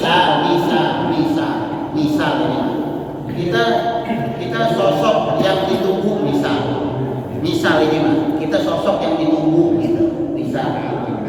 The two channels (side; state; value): both; identical; correlation 1.00